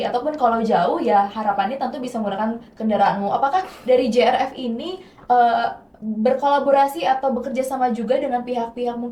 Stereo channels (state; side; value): identical; both; correlation 1.00